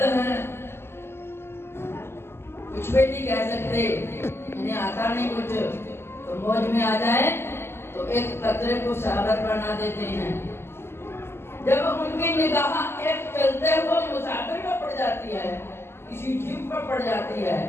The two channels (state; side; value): late; right; 0.12 ms